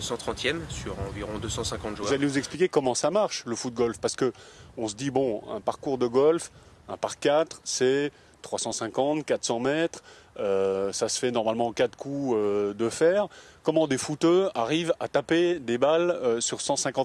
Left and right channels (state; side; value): identical; both; correlation 1.00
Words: sur environ 250 joueurs. Vous allez nous expliquer comment ça marche, le foot-golf? Parce qu'on se dit, bon, un parcours de golf, un par 4, c'est 350, 400 mètres. Ça se fait normalement en 4 coups de fer. Comment des footeux arrivent à taper des balles sur